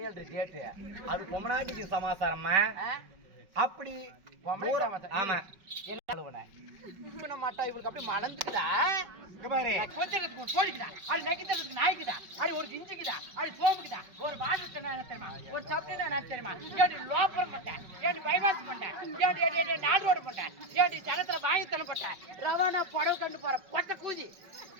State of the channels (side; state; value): left; late; 5.4 ms